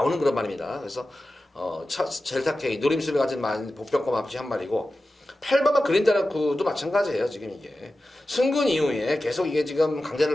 그런 말입니다. 그래서 델타 K 노림수를 가진 복병권 마필이 한 마리고 8번만 그린다르크도 마찬가지예요. 지금 이게 승근 이후에 계속 이게 지금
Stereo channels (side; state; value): both; normal; correlation 0.94